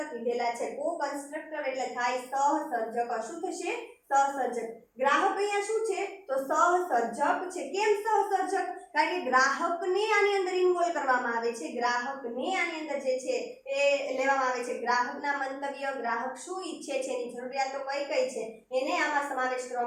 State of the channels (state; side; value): identical; both; correlation 1.00